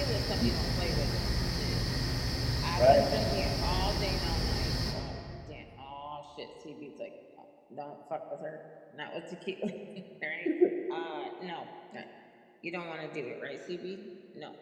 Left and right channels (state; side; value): identical; both; correlation 1.00